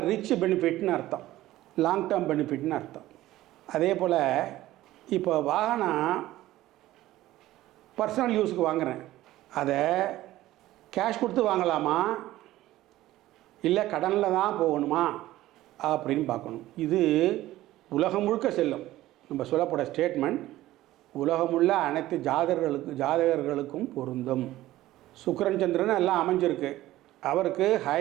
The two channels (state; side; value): quieter; left; 15.6 dB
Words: ரிச் பெனிஃபிட்னு அர்த்தம், லாங் டேர்ம் பெனிஃபிட்னு அர்த்தம். அதே போல் இப்போ வாகனம் பர்சனல் யூஸுக்கு வாங்குகிறேன், அதை கேஷ் கொடுத்து வாங்கலாமா இல்லை கடனில் தான் போகணுமா அப்படின்னு பார்க்கணும். இது உலகம் முழுக்க செல்லும். நம்ம சொல்லப்போகிற ஸ்டேட்மெண்ட் உலகமுள்ள அனைத்து ஜாதகர்களுக்கும் பொருந்தும். சுக்கிரன் சந்திரன் எல்லாம் அமைஞ்சிருக்கு. அவருக்கு